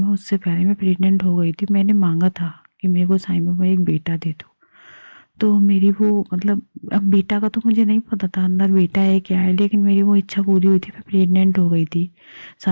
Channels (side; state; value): both; inverted; correlation -1.00